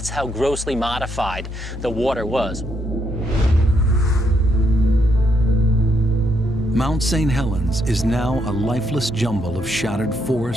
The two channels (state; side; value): normal; both; correlation 0.76